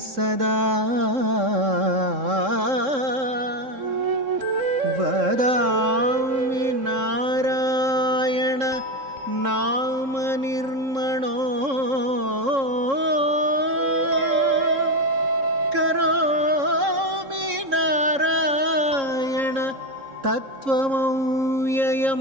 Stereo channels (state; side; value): late; left; 3.7 ms